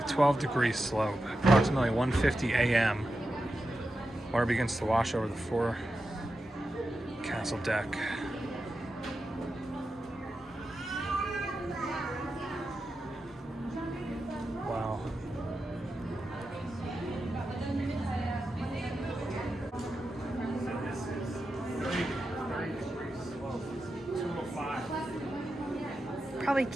12 degree slope, approximately 1:50 a.m. Water begins to wash over the forecastle deck. Wow. This is 30 degree slope, 205. probably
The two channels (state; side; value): normal; both; correlation 0.90